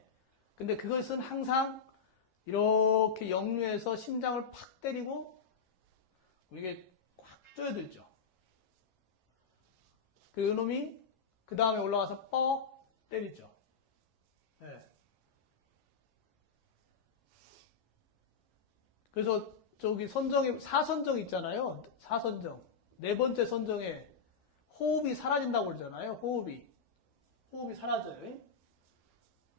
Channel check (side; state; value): right; quieter; 5.8 dB